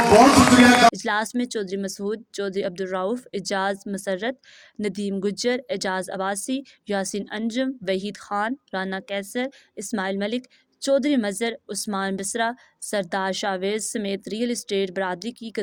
بہت شکریہ۔ اجلاس میں چودھری مسعود، چودھری عبدالرؤف، اعجاز مسرت، ندیم گجر، اعجاز عباسی، یاسین انجم، وحید خان، رانا کیسر، اسماعیل ملک، چودھری مظہر، عثمان بسرا، سردار شاویز سمیت ریئل اسٹیٹ برادری کی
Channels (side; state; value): both; identical; correlation 1.00